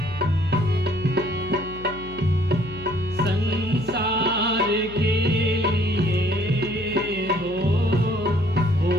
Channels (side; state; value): left; noise; hum, 16 dB below the sound